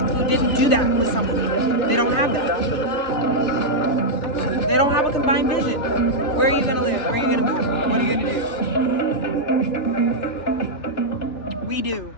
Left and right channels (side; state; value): right; late; 2.9 ms